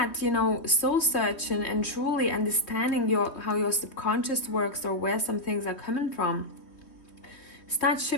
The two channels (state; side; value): late; right; 3.1 ms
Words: you know, soul searching and truly understanding how your subconscious works, or where some things are coming from, start